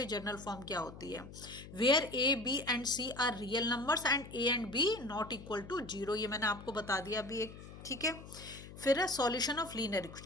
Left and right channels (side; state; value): left; noise; hum, 15 dB below the sound